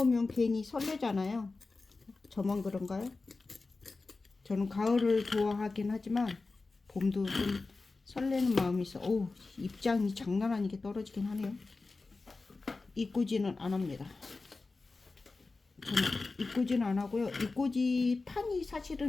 괜히 설레잖아요. 저만 그런가요? 저는 가을을 좋아하긴 하지만 봄도 좀 설레는 마음이 있어. 오, 입장이 장난 아니게 떨어지긴 하네요. 이꾸지는 안 합니다. 저는 이꾸지는 안 하고요. 이꾸지 판이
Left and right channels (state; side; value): quieter; right; 3.7 dB